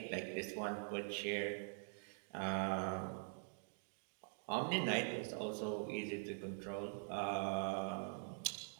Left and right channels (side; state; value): left; silent; digital silence